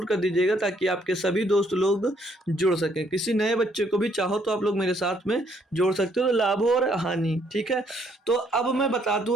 कर दीजिएगा ताकि आपके सभी दोस्त लोग जुड़ सकें। किसी नए बच्चे को भी चाहो तो आप लोग मेरे साथ में जोड़ सकते हो। तो लाभ और हानि, ठीक है। तो अब मैं बता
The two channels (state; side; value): normal; both; correlation 0.68